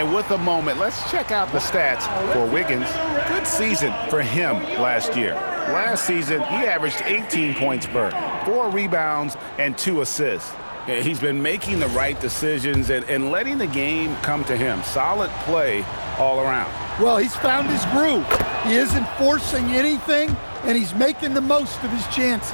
with a moment, let's check out the stats for Wiggins. Good season for him last year. Last season, he averaged 18 points per, 4 rebounds, and 2 assists. He's been making the right decisions and letting the game come to him. Solid play all around. Well, he's found his groove. He isn't forcing anything, and he's making the most of his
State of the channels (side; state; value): both; inverted; correlation -1.00